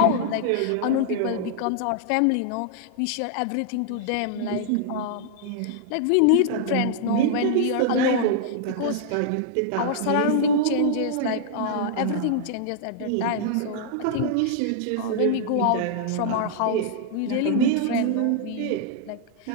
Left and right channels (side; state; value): both; different; correlation -0.01